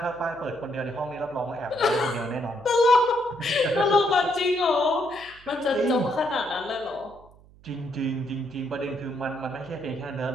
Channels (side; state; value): right; noise; hum, 25 dB below the sound